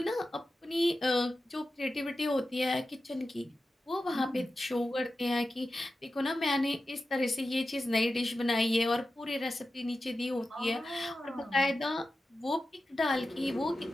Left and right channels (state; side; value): normal; both; correlation 0.93